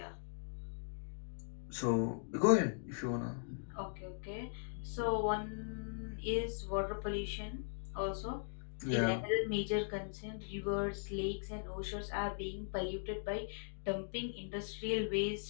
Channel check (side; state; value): right; silent; digital silence